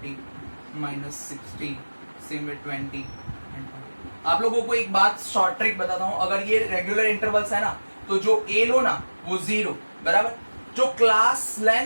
minus 60, same with 20 and 40। आप लोगों को एक बात शॉर्ट ट्रिक बताता हूँ, अगर ये रेगुलर इंटरवल्स है ना तो जो ए लो ना वो 0 बराबर, जो क्लास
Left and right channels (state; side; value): inverted; both; correlation -1.00